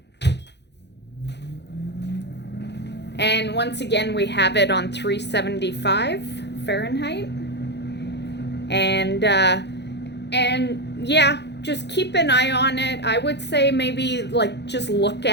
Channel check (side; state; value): right; late; 0.50 ms